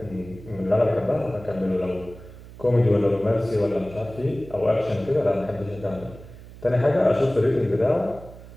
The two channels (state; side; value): noise; right; hum, 17 dB below the sound